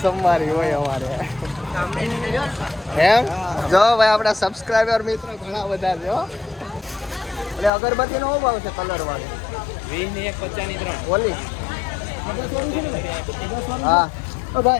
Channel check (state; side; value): drops out; right; at 7.7 s